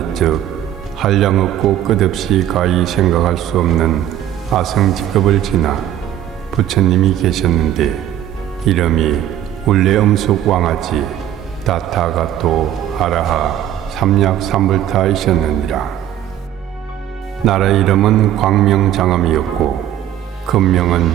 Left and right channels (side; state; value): left; quieter; 11.5 dB